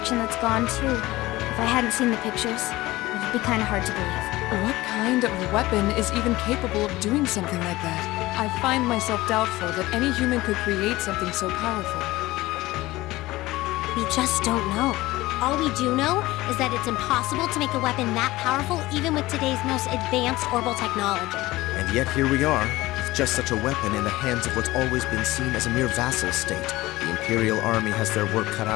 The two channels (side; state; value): right; quieter; 18.6 dB